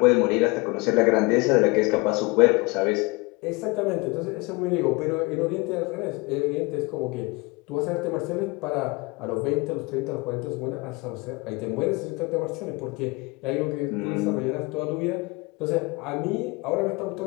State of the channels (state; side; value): quieter; right; 25.5 dB